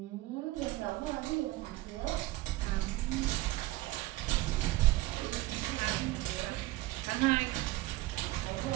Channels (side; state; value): left; quieter; 18.3 dB